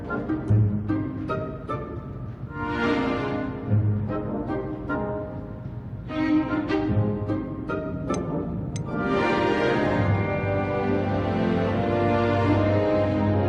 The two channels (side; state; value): both; identical; correlation 1.00